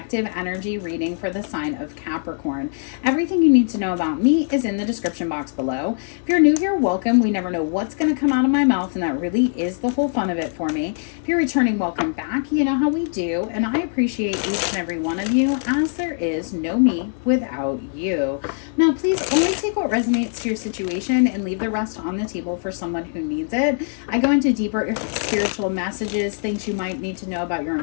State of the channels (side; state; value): right; silent; 64 dB below the other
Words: energy reading for the sign of Capricorn. Everything you need to know about me is in the description box below. If you're new here, welcome. We never know what's going to come out of my mouth, and that really is the whole fun of it for me. If you're returning, welcome back. You know how we do, and I appreciate each and every one of you, as there is no me without you. Now, please only take what resonates to your situation and leave the rest on the table for someone who needs it. I go into deeper spiritual messages, things you might need to know about your